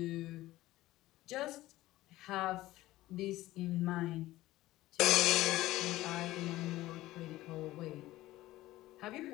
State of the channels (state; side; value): quieter; right; 16.7 dB